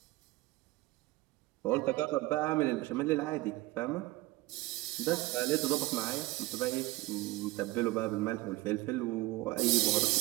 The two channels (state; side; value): quieter; left; 19.7 dB